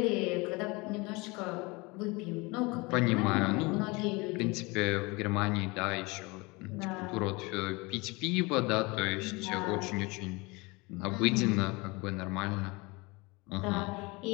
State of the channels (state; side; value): quieter; right; 25.5 dB